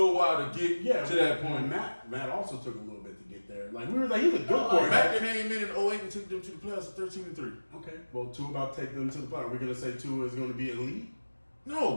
while to get to that point. Matt also took a little bit to get there. Like we were like, he's a good quarterback. Matt came in 08 and took them to the playoffs at 13-3. Okay. Well, Tua about to take them to the playoffs. We're gonna say Tua is gonna be elite.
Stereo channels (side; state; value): both; inverted; correlation -1.00